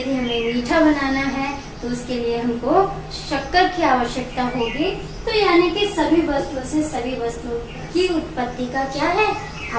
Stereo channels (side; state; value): both; identical; correlation 1.00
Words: हमें मीठा बनाना है तो उसके लिए हमको शक्कर की आवश्यकता होगी। तो यानी कि सभी वस्तुओं से सभी वस्तुओं की उत्पत्ति का क्या है,